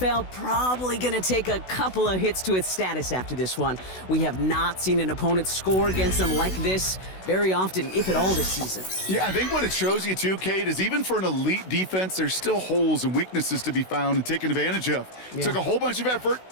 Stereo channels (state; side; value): late; right; 16 ms